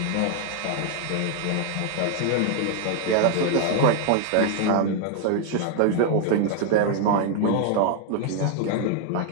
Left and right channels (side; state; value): both; different; correlation 0.00